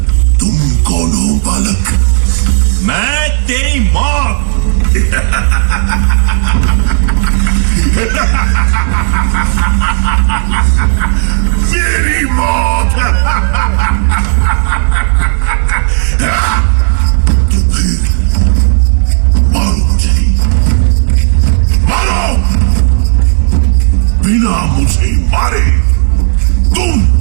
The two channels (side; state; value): left; silent; digital silence